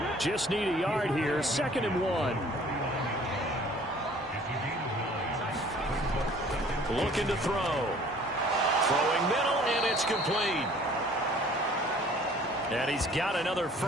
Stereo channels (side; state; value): both; normal; correlation 0.53